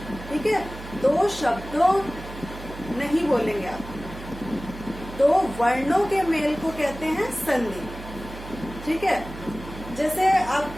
ठीक है। दो शब्दों नहीं बोलेंगे आप, दो वर्णों के मेल को कहते हैं संधि, ठीक है। जैसे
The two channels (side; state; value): right; noise; hum, 13 dB below the sound